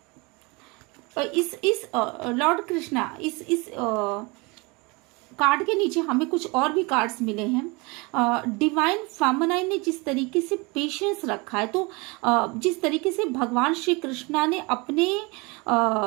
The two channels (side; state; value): left; quieter; 27.0 dB